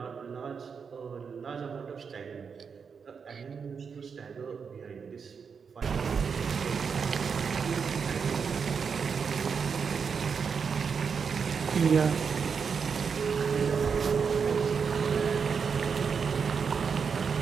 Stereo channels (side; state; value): left; quieter; 6.0 dB